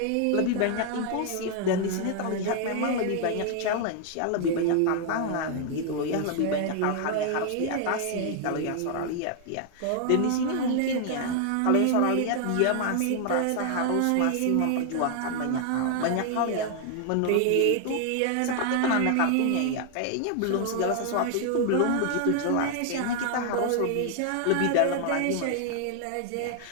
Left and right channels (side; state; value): both; different; correlation 0.00